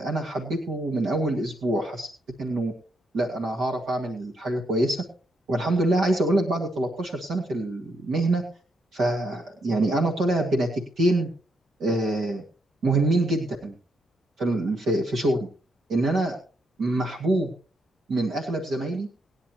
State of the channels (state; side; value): normal; both; correlation 0.77